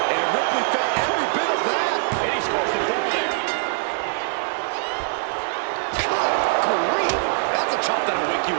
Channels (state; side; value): silent; left; digital silence